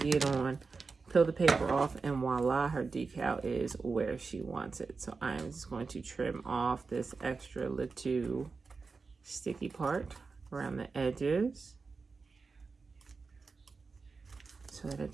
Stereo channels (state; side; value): quieter; left; 4.5 dB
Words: it on, peel the paper off, and voila, her decal is where she wants it. So I'm just going to trim off this extra little sticky part around the edges so that it